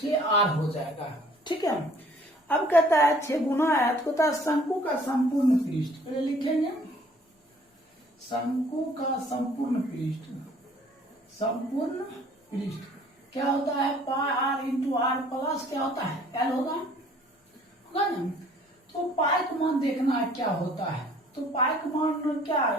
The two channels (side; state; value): both; normal; correlation 0.56